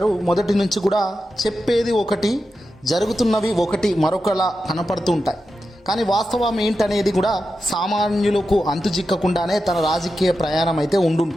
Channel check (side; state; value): both; normal; correlation 0.90